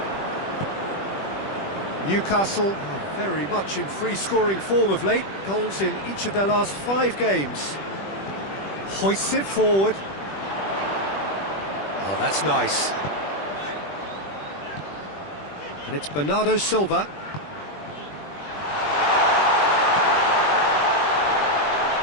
Newcastle are very much in free-scoring form of late. Goals in each of their last 5 games. Hoists it forward. Oh, that's nice. And it's Bernardo Silva.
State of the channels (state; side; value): late; right; 20 ms